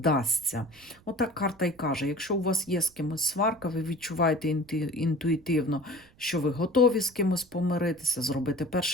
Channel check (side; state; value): right; noise; rumble, 28 dB below the sound